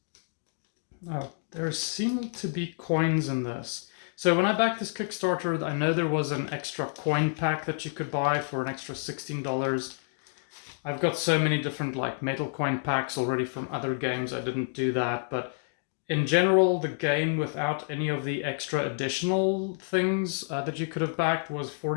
Oh, there seem to be coins in this. So when I backed this Kickstarter, I know there was an extra coin pack that you could buy for an extra $16. I've got so many different like metal coin packs already from other games. I didn't do that, but in general, the game without any of the extra additional things that you could have backed was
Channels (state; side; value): silent; right; digital silence